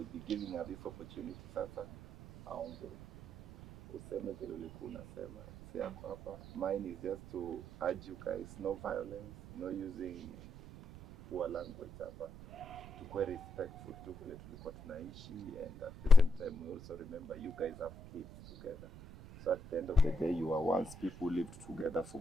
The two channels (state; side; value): noise; right; rumble, 15 dB below the sound